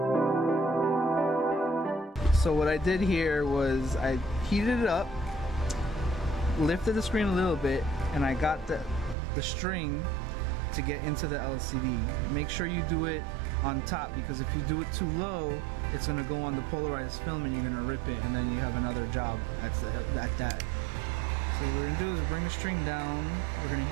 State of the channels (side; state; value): left; drops out; at 9.2 s